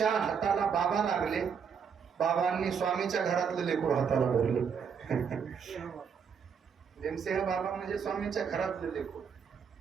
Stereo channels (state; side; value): quieter; left; 6.8 dB